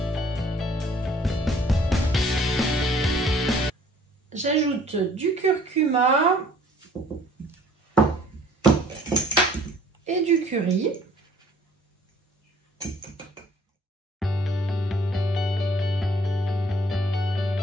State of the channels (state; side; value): normal; both; correlation 0.56